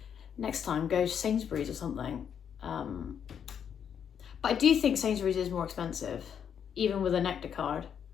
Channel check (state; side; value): quieter; right; 8.1 dB